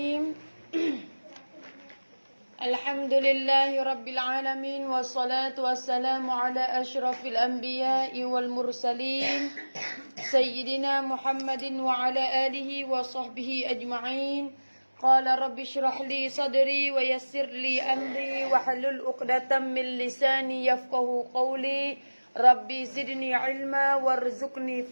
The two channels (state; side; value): inverted; both; correlation -1.00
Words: Alhamdulillahi rabbil alamin. Wassalatu wassalamu ala ashrafil anbiya'i wal mursalin Sayyidina Muhammadin wa ala alihi wa sahbihi ajma'in. Qala rabbi shrah li sadri wa yassir li amri wa halul uqdatan min lisani yafqahu qawli. Rabbi zidni ilma warzuqni